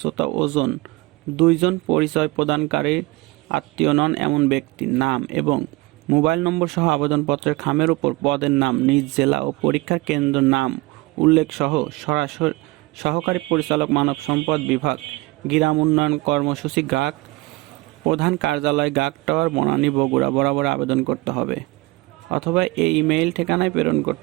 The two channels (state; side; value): quieter; left; 22.2 dB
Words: ওজন, 2 জন পরিচয় প্রদানকারীর আত্মীয় নন এমন ব্যক্তির নাম এবং মোবাইল নম্বর সহ আবেদনপত্রের খামের উপর পদের নাম, নিজ জেলা ও পরীক্ষার কেন্দ্র নাম উল্লেখ সহ সরাসরি সহকারী পরিচালক মানব সম্পদ বিভাগ, গ্রাম উন্নয়ন কর্মসূচি, গ্রাহক প্রধান কার্যালয়, গাক টাওয়ার, বনানী, বগুড়া বরাবর আবেদন করতে হবে অথবা এই ইমেইল ঠিকানায় প্রেরণ